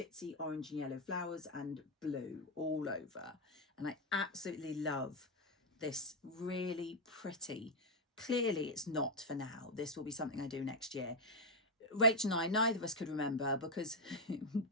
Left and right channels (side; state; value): both; normal; correlation 0.02